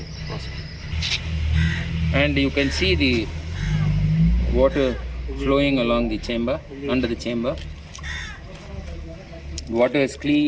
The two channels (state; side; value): identical; both; correlation 1.00